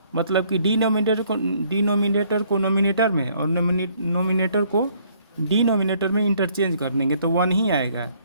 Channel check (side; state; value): both; inverted; correlation -0.64